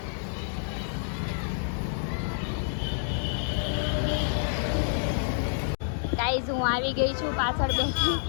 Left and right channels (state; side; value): silent; right; digital silence